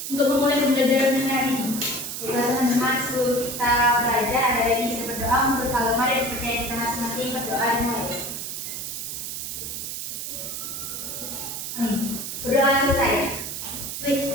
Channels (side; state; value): right; noise; hiss, 6 dB below the sound